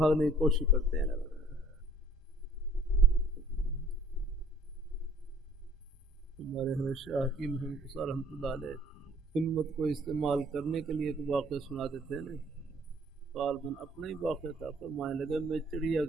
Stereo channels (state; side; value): normal; both; correlation 0.56